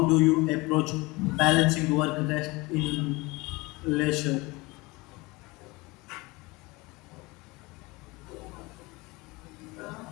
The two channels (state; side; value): quieter; right; 23.7 dB